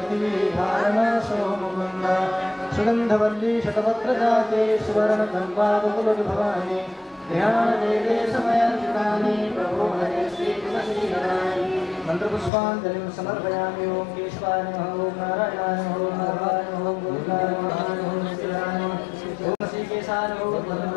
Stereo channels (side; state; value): right; drops out; at 12.5 s